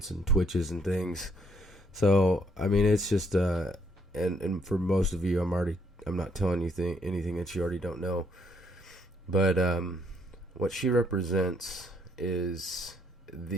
and twitches and things. So I mean, it's just and for most of you, I'm not telling you anything that you already don't know. But what she represents is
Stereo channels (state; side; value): normal; both; correlation 0.70